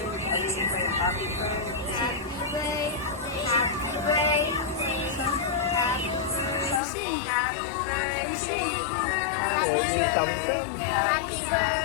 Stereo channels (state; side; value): drops out; right; at 6.8 s